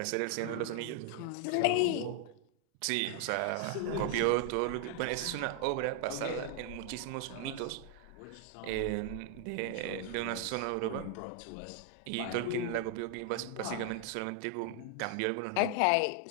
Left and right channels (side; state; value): both; different; correlation 0.00